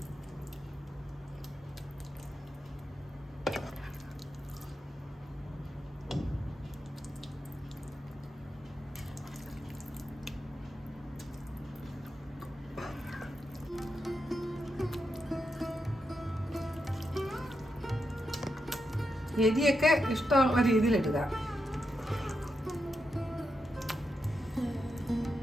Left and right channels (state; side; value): normal; both; correlation 0.86